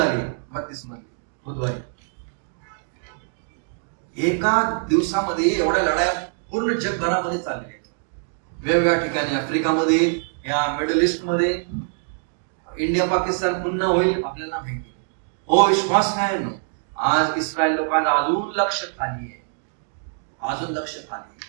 32 मध्ये बुधवारी. एका दिवसामध्ये एवढ्या लढाया पूर्ण जगभरामध्ये चालल्या आहेत, वेगवेगळ्या ठिकाणी. आफ्रिकामध्ये, या मिडल ईस्ट मध्ये, इंडिया पाकिस्तान पुन्हा होईल आपल्याला माहिती. हो विश्वास नाही. आज इस्रायल लोकांना अजून लक्ष खाली आहे, अजून लक्ष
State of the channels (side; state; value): left; silent; digital silence